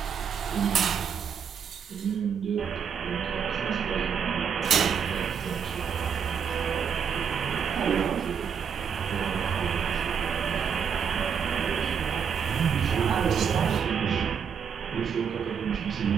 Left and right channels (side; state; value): left; quieter; 7.2 dB